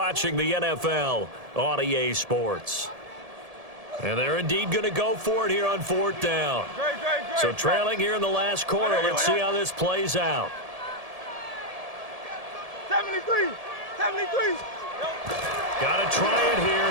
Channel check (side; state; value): left; late; 1.7 ms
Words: the NFL on EA Sports. And they're indeed going to go for it here on 4th down. Great. So trailing here in the last quarter. Let's see how this plays out. 73. Got to try it here.